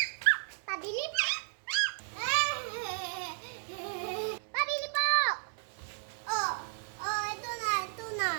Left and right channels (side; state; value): left; silent; digital silence